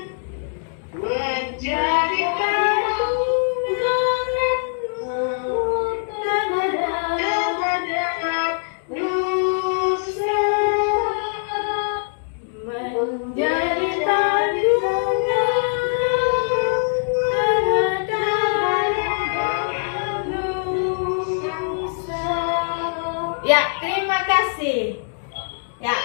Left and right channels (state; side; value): silent; right; digital silence